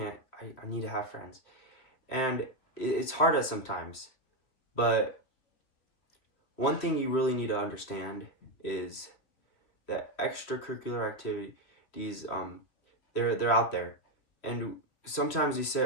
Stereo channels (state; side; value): late; right; 3.2 ms